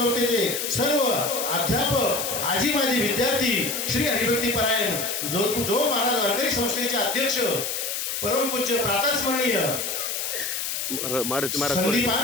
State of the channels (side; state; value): left; noise; hiss, 2 dB below the sound